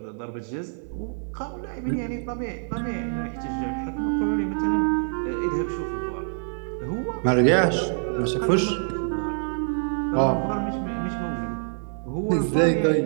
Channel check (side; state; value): left; silent; digital silence